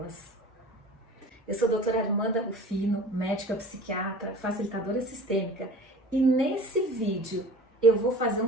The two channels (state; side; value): normal; both; correlation 0.41